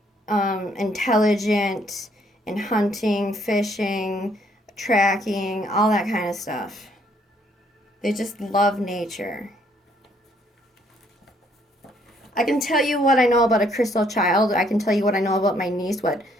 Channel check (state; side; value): normal; both; correlation 0.67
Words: intelligent in hunting, fishing, tracking, all that kind of stuff. They just love nature. I can tell you what I know about a crystal child. I can tell you what I know about my niece, what